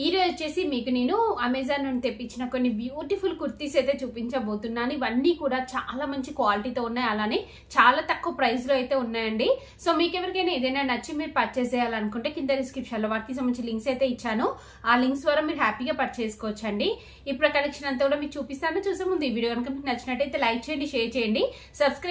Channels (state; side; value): identical; both; correlation 1.00